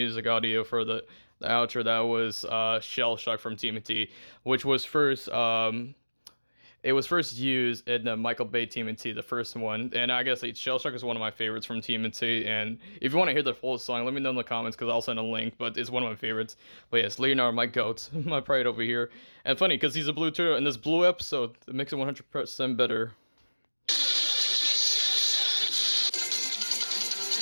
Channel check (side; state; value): both; inverted; correlation -1.00